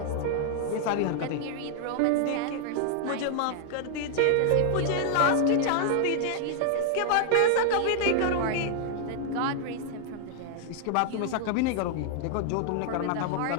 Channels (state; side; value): different; both; correlation -0.01